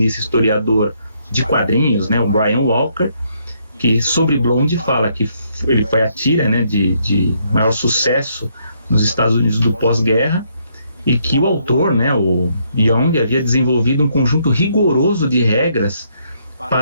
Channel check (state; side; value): inverted; both; correlation -0.72